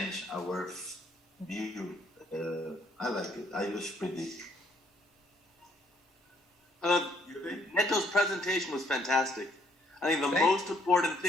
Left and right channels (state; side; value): normal; both; correlation 0.67